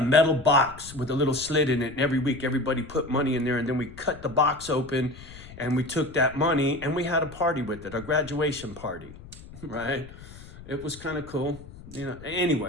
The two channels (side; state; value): left; noise; rumble, 17 dB below the sound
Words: metal box with a little slit in it, and every week everybody put money in there, and then we cut the box open, and we took that money, and we had a party with it, a graduation party, right? It was kind of cool, you know.